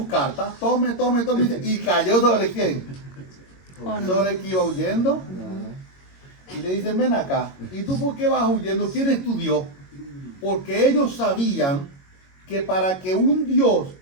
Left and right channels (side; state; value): right; late; 22 ms